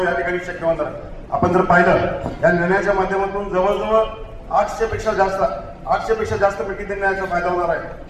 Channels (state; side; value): identical; both; correlation 1.00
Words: या ठिकाणी शक्य होणार आहे. आपण जर पाहिलं या निर्णयाच्या माध्यमातून जवळजवळ 800 पेक्षा जास्त मिळकती त्यांना याचा फायदा होणार आहे.